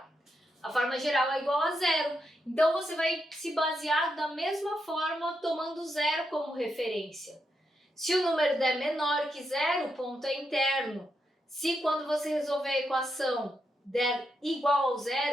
A forma geral é igual a 0, então você vai se basear da mesma forma tomando 0 como referência. Se o número der menor que 0, o ponto é interno. Se quando você resolver a equação der igual ao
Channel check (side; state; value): both; normal; correlation 0.83